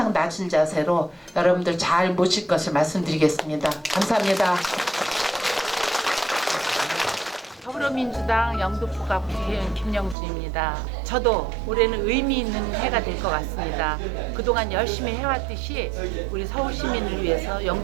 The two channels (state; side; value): drops out; left; at 10.2 s